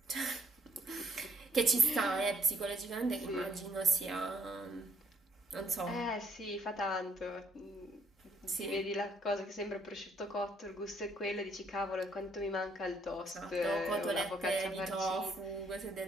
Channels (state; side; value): normal; both; correlation 0.67